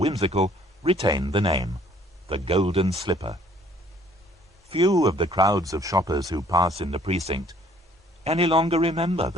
retained the name, the Golden Slipper. Few of the crowds of shoppers who pass in the precinct any longer remember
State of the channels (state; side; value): normal; both; correlation 0.59